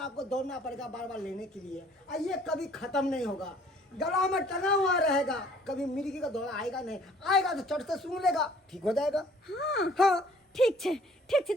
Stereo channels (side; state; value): both; normal; correlation 0.57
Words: आपको दौड़ना पड़ेगा बार बार लेने के लिए और ये कभी खत्म नहीं होगा। गला में टंगा हुआ रहेगा कभी मिर्गी का दौरा आएगा नहीं। आएगा तो चढ़ से सूंघ लेगा ठीक हो जाएगा। हां हाँ ठीक छे